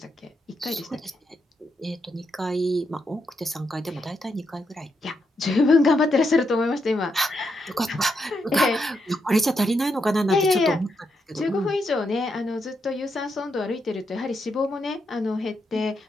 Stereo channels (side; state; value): both; normal; correlation 0.81